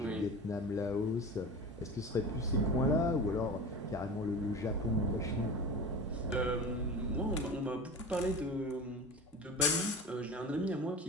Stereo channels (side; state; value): both; normal; correlation 0.32